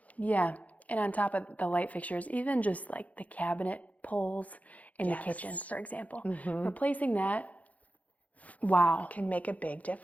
Yeah. And on top of the light fixtures, even just like the cabinet pulls in the kitchen, for example, replacing that, wow. Can make a big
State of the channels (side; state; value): right; late; 0.071 ms